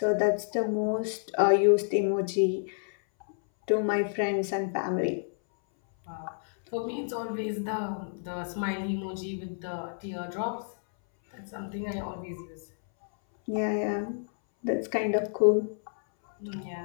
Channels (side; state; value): right; silent; 58 dB below the other